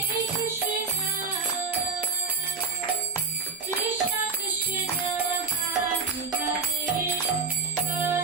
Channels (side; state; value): left; quieter; 4.9 dB